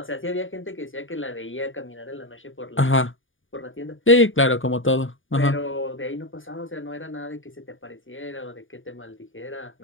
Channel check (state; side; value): late; right; 0.57 ms